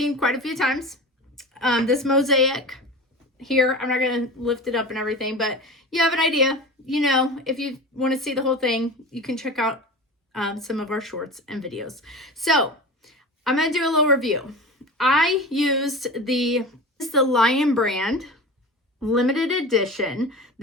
quite a few times. This mosaic here, I'm not going to lift it up and everything, but you have an idea. You know, if you want to see the whole thing, you can check out some of our shorts and videos. So I'm going to do a little review. I used the Lion Brand limited edition.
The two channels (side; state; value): both; normal; correlation 0.32